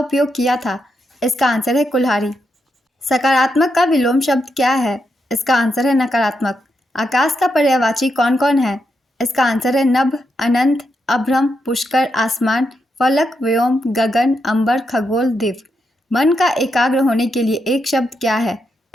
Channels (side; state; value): both; normal; correlation 0.83